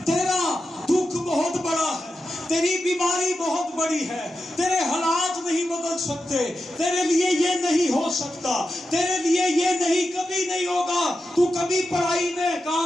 تیرا دکھ بہت بڑا ہے، تیری بیماری بہت بڑی ہے، تیرے حالات نہیں بدل سکتے، تیرے لیے یہ نہیں ہو سکتا، تیرے لیے یہ نہیں، کبھی نہیں ہوگا، تو کبھی پڑھائی میں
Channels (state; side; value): normal; both; correlation 0.90